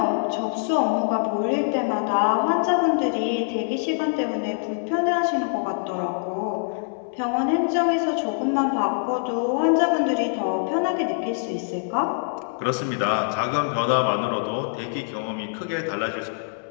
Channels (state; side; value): silent; right; 61 dB below the other